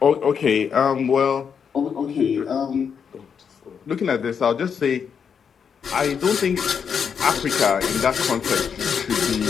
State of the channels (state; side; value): quieter; right; 6.9 dB